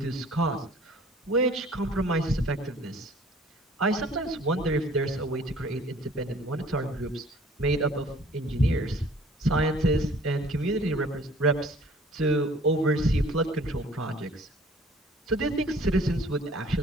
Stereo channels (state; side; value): normal; both; correlation 0.53